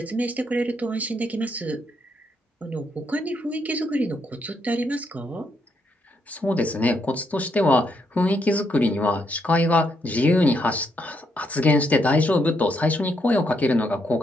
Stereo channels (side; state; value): both; normal; correlation 0.76